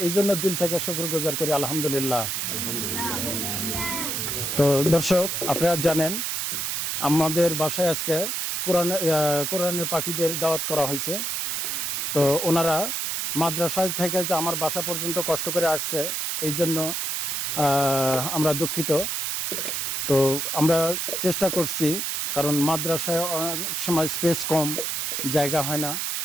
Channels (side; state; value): right; noise; hiss, 1 dB below the sound